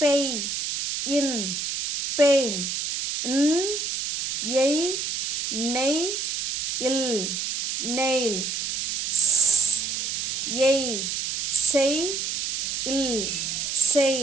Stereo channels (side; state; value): right; noise; hiss, 2 dB below the sound